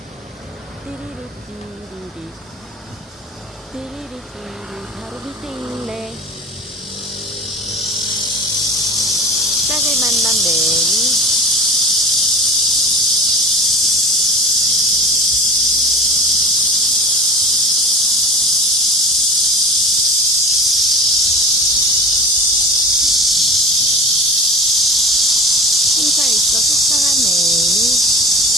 띠리리 띠리리 띠리리 띠리 바로 밑에 있네. 짝을 만난 매미.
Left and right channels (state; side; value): normal; both; correlation 0.35